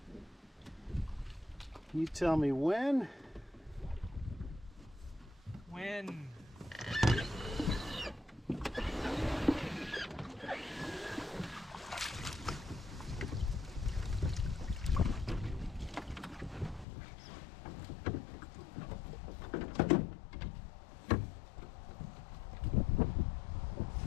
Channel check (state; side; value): drops out; right; at 16.9 s